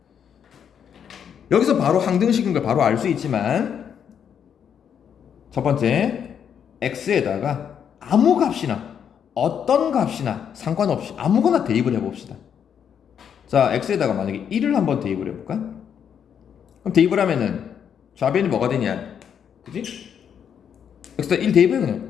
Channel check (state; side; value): quieter; right; 8.1 dB